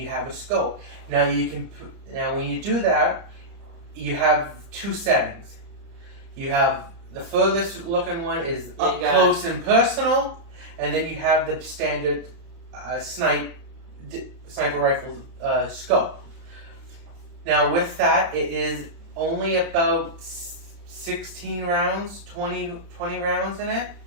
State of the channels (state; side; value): late; left; 30 ms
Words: have a scope. Now when you do that, you have 2 settings. You have the furthest looking one is up close and personal, and then you have the standard sniper rifle scope. Now with that, it is only about 16 rounds, 20 rounds in it.